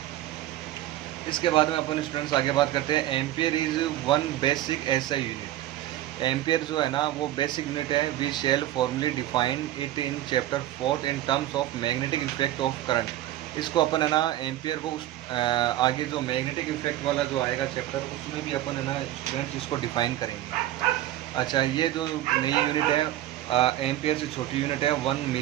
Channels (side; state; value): left; quieter; 14.0 dB